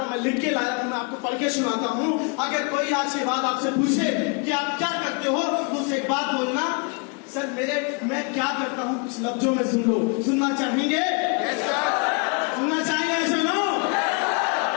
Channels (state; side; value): quieter; right; 34.4 dB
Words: मैं लिख के लाया हूं, मैं आपको पढ़ के सुनाता हूं। अगर कोई आज के बाद आपसे पूछे कि आप क्या करते हो, तो उसे एक बात बोलना, सर मैं क्या करता हूं, कुछ लफ्जों में सुन लो। सुनना चाहेंगे? सुनना चाहेंगे? सुनो।